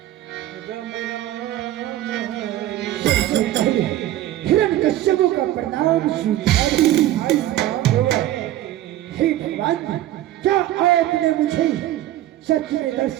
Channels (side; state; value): left; quieter; 13.8 dB